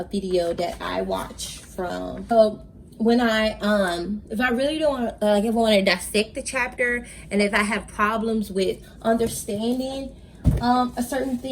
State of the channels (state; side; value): identical; both; correlation 1.00